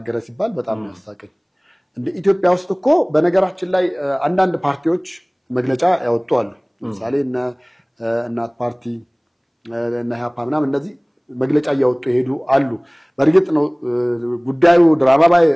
ሲባል በጣም ያሳቀኝ። እንደ ኢትዮጵያ ውስጥ እኮ በነገራችን ላይ አንዳንድ ፓርቲዎች መግለጫ ያወጡ አሉ። ለምሳሌ እናት ፓርቲ እና ኢህአፓ ምናምን እነዚህ መግለጫ እያወጡ ይሄዱ አሉ። በእርግጥ ነው ጉዳዩ ድራማ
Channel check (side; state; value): both; identical; correlation 1.00